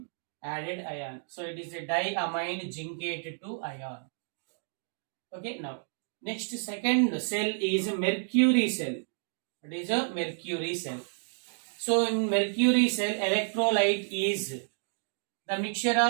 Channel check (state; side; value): silent; left; digital silence